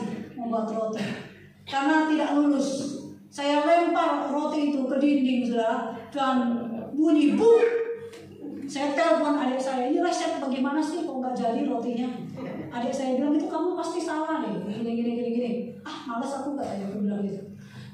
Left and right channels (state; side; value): identical; both; correlation 1.00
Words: membuat roti. Karena tidak lulus. Saya lempar roti itu ke dinding, saudara. Dan bunyi buk. Saya telepon adik saya, ini resep bagaimana sih kok nggak jadi rotinya? Adik saya bilang, itu kamu pasti salah deh, gini. Malas aku nggak ya, aku bilang gitu.